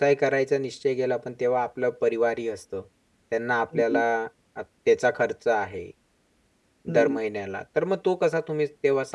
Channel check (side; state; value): both; identical; correlation 1.00